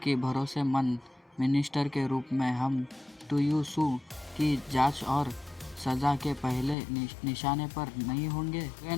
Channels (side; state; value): right; drops out; at 6.8 s